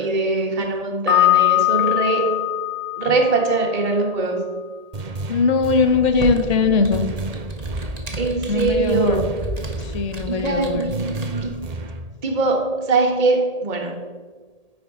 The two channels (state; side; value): late; left; 1.8 ms